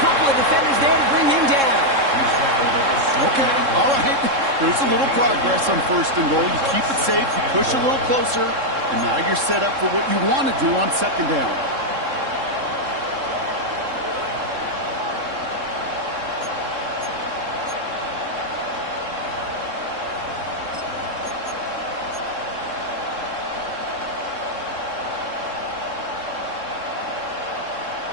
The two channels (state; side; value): late; left; 3.7 ms